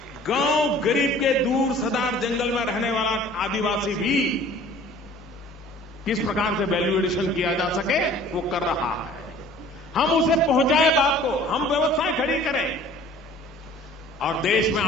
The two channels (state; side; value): normal; both; correlation 0.49